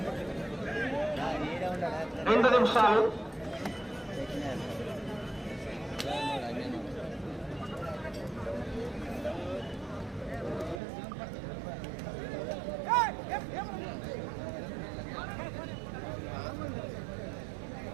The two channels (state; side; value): drops out; left; at 10.8 s